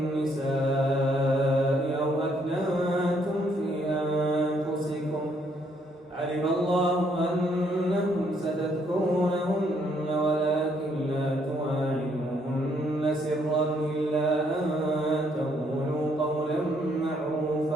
أو أكننتم في أنفسكم علم الله أنكم ستذكرونهن ولكن لا تواعدوهن سرا إلا أن تقولوا قولا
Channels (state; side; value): normal; both; correlation 0.70